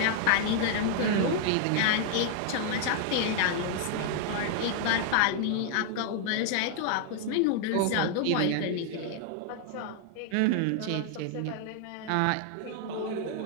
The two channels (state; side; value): different; both; correlation 0.00